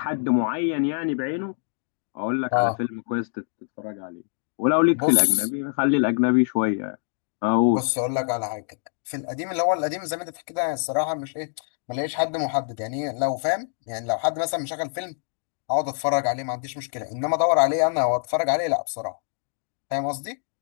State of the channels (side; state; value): right; silent; digital silence